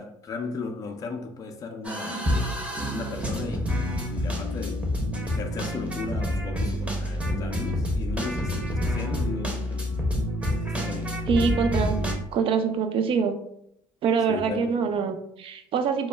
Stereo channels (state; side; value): normal; both; correlation 0.62